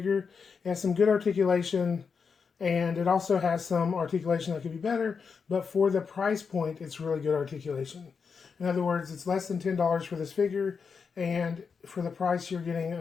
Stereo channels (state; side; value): quieter; right; 5.7 dB